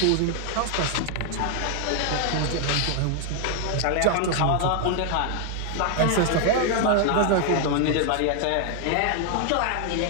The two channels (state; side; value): different; both; correlation 0.00